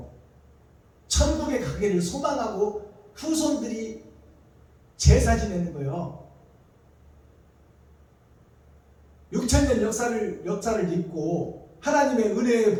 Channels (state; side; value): identical; both; correlation 1.00